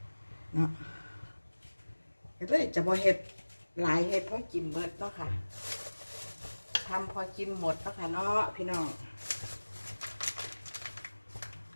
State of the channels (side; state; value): both; inverted; correlation -1.00